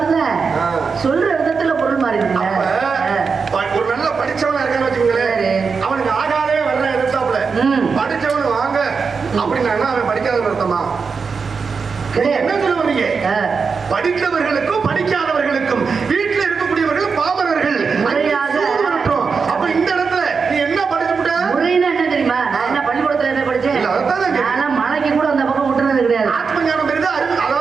தான் சொல்ற விதத்துல பொருள் மாறி இருக்குல்ல. ஒரு நல்ல படிச்சவனா இருக்கான்னு வச்சுக்கோங்களேன், அவனுக்கு ஆகாதே வர்ற எதிர்த்தாப்புல படிச்சவனு வாங்க அப்படின்னா அவன் படிக்காதவன் அர்த்தமா? என்ன சொல்ல வரீங்க? படித்தவர்களுக்கும் படிக்காதவர்களுக்கும் வீட்டில் இருக்கக்கூடியவர்கள் பாமரர்கள் அப்ப இந்த இடத்துல நீ என்ன படிச்சுட்ட? முறைன்னா என்ன தெரியுமா? நான் என்ன பள்ளிக்கூடத்துல என்ன படிச்சேன்? மலைக்கு கூட அந்த பக்கம் விட்டுறது கிடையாது. ஆத்ம ஞானம் பெரிதா,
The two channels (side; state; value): left; quieter; 5.3 dB